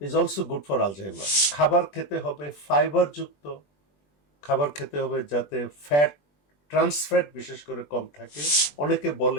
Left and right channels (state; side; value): late; right; 20 ms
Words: also good for Alzheimer. খাবার খেতে হবে ফাইবারযুক্ত, খাবার খেতে হবে যাতে ফ্যাট, ট্রান্সফ্যাট বিশেষ করে কম থাকে। অনেকে